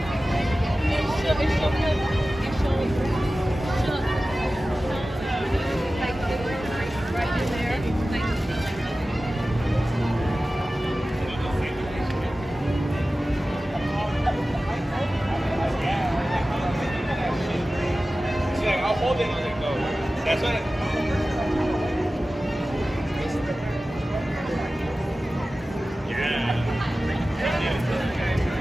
hold it and it goes. That's what it...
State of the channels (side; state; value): both; normal; correlation 0.96